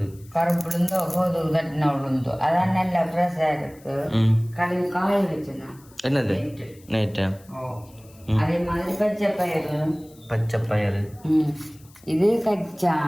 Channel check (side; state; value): left; noise; hiss, 27 dB below the sound